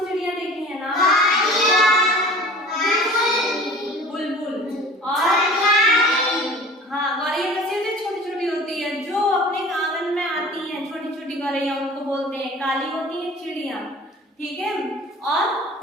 चिड़िया देखी है ना? बुलबुल और हाँ, गौरैया कैसी होती है? छोटी छोटी होती है, जो अपने आंगन में आती हैं। छोटी छोटी गौरैया उनको बोलते हैं। काली होती है चिड़िया, ठीक है। और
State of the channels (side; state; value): both; normal; correlation 0.43